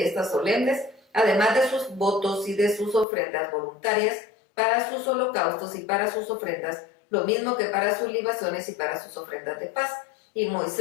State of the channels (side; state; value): right; drops out; at 3.1 s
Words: solemnes, además de sus votos y de sus ofrendas voluntarias, para sus holocaustos y para sus ofrendas, lo mismo que para sus libaciones y para sus ofrendas de paz. Y